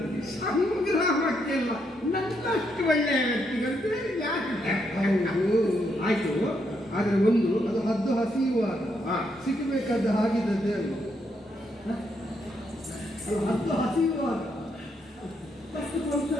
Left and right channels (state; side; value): normal; both; correlation 0.77